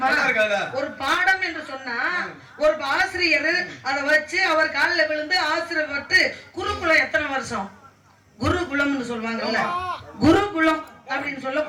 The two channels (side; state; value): both; identical; correlation 1.00